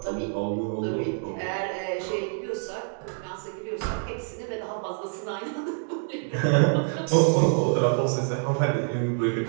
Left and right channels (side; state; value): left; silent; 60 dB below the other